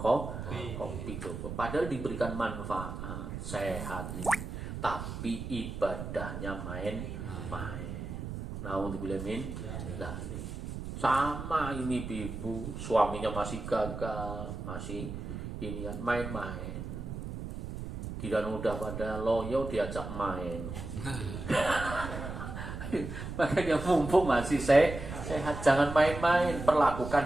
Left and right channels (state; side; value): noise; right; rumble, 7 dB below the sound